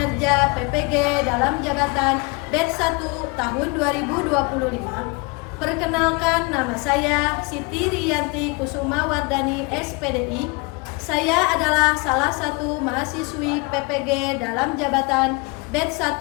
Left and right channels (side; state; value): right; quieter; 28.4 dB